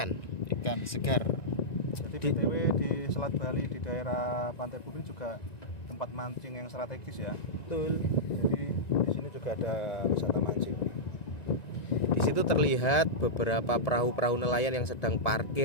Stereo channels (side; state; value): right; late; 1.9 ms